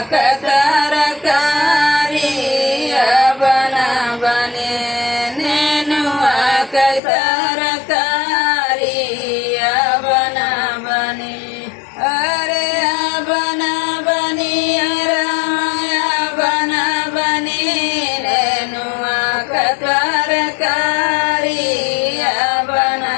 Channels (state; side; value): drops out; right; at 7.0 s